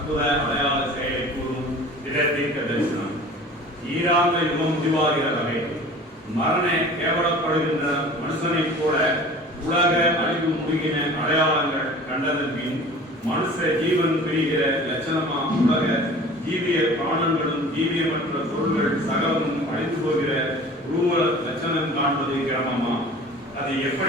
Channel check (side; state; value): both; normal; correlation 0.43